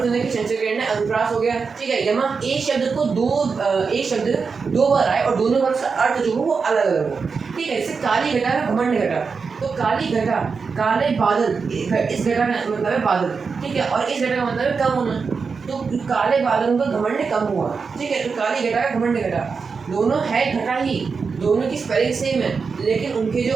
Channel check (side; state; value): left; quieter; 5.1 dB